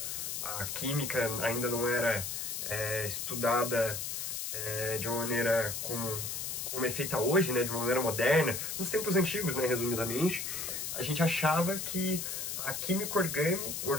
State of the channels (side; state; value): left; noise; hiss, 4 dB below the sound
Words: a química ainda não era estudada de uma maneira como é feita hoje, né, de uma maneira moderna, nos tempos antigos, né, resumidamente, a gente achava que a química